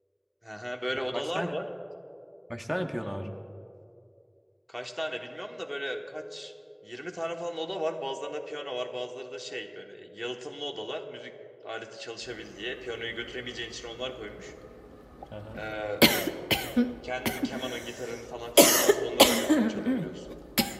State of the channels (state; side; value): identical; both; correlation 1.00